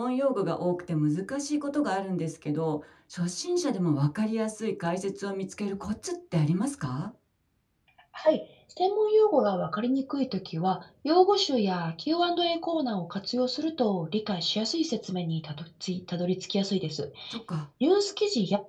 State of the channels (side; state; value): both; identical; correlation 1.00